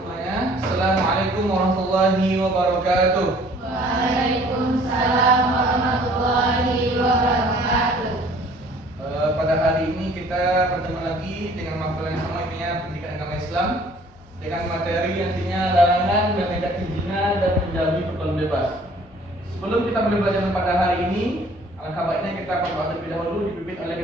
Assalamualaikum warahmatullahi wabarakatuh. Waalaikumsalam warahmatullahi wabarakatuh. Pada hari ini kita bertemu lagi dengan materi yang sama, intinya pendidikan agama Islam, dengan materi intinya larangan mendekati zina dan menjauhi pergaulan bebas. Sebelum kita mulai belajar pada hari ini, alangkah baiknya kita berdoa terlebih dahulu, dipimpin oleh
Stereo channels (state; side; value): normal; both; correlation 0.55